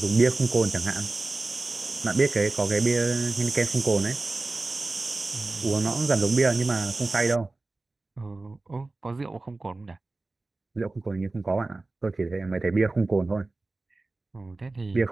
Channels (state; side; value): quieter; left; 3.2 dB